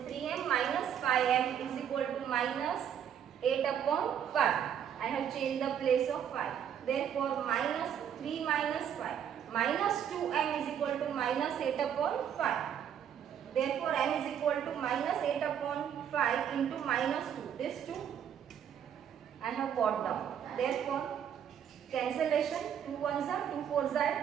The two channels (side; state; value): left; quieter; 8.9 dB